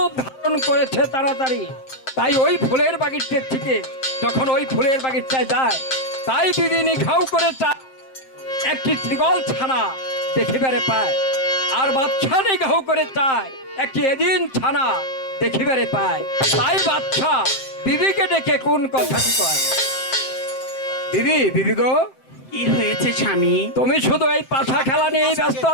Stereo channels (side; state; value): right; late; 7.6 ms